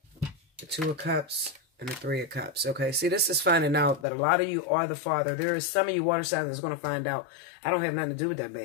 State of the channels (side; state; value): right; drops out; at 4.0 s